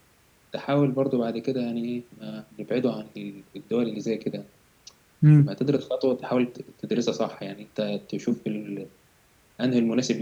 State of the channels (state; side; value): identical; both; correlation 1.00